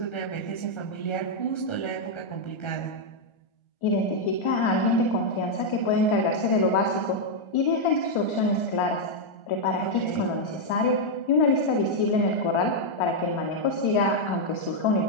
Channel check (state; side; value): late; right; 1.4 ms